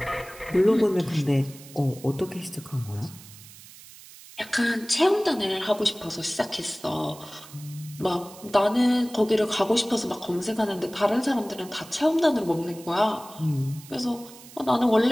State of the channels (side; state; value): right; noise; hiss, 19 dB below the sound